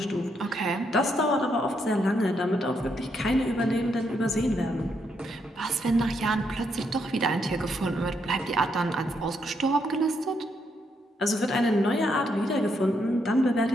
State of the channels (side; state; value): both; normal; correlation 0.77